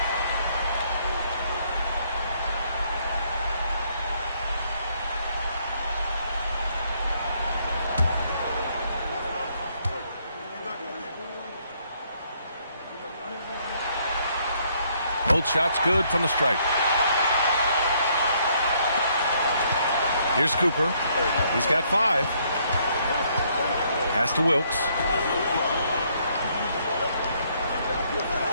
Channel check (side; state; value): both; inverted; correlation -0.69